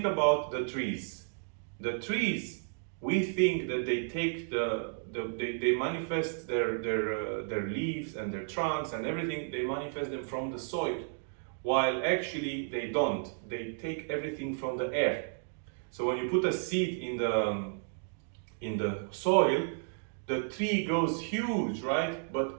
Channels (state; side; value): silent; left; digital silence